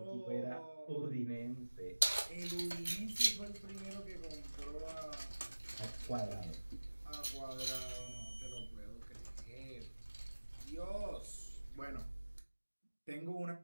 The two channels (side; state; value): both; inverted; correlation -1.00